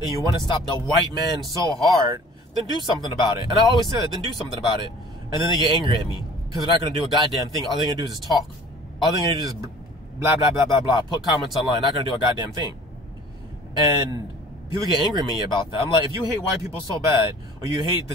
you want to stop the white man so hard, then do something about it. And I always say that, then do something about it. And then they get angry at me because they're not going to do a goddamn thing. All they're going to do is just talk. All they're going to do is blah, blah, blah, blah, blah. Put comments online. Not going to do a goddamn thing. And people get angry at me about that. I'm like, if you hate white people so bad, or you hate the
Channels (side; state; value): both; normal; correlation 0.48